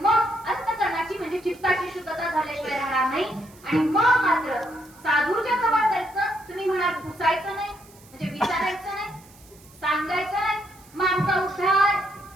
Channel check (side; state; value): right; noise; hiss, 25 dB below the sound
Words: मग अंतकरणाची म्हणजे चित्ताची शुद्धता झाल्याशिवाय राहणार नाही. आणि मग मात्र साधूच्या जवळ जायचं. तुम्ही म्हणाल पुसायचं नाही म्हणजे विचारायचं नाही, सांगायचं नाही, मग आमचा उद्धार.